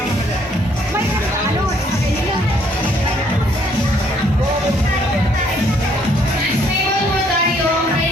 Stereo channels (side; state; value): both; normal; correlation 0.66